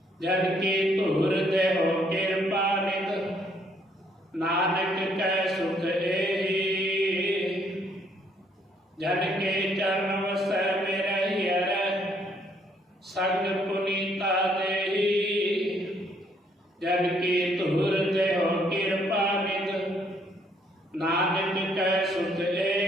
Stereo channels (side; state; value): both; normal; correlation 0.68